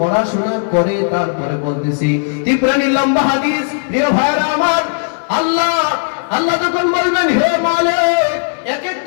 পড়াশোনা করে তারপরে বলতেছি। তিপ্রানি লম্বা হাদিস, প্রিয় ভাইরা আমার। আল্লাহ যখন বলবেন, হে মালিক এক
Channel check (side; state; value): right; silent; 56 dB below the other